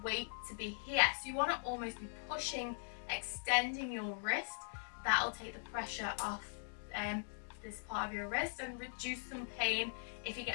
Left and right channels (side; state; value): right; silent; digital silence